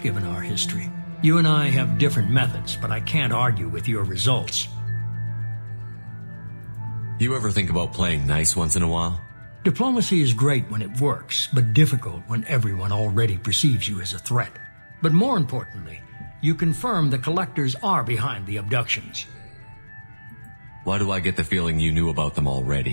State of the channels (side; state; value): both; inverted; correlation -1.00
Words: given our history. You and I have different methods, but I can't argue with your results. You ever think about playing nice once in a while? Diplomacy is great when it works, but difficult when everyone already perceives you as a threat. But more importantly, you confirm the collectors are behind the abductions. Why do I get the feeling you knew about them